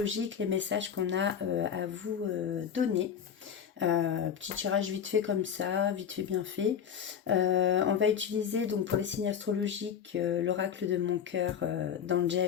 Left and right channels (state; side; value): quieter; right; 8.0 dB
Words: les messages qu'on a à vous donner. Petit tirage vite fait comme ça, vite fait bien fait. On va utiliser donc pour les signes astrologiques l'oracle de mon cœur